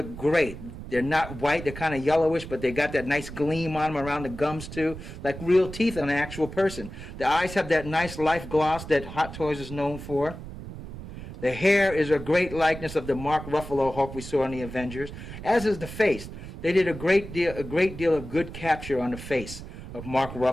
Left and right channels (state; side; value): noise; right; rumble, 11 dB below the sound